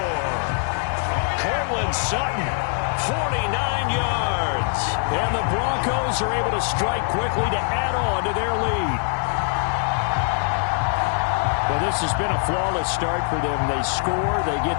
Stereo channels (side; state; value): right; silent; 57 dB below the other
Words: Cortland Sutton, 49 yards. And the Broncos are able to strike quickly to add on to their lead. Well, this has been a flawless start for them. They score, they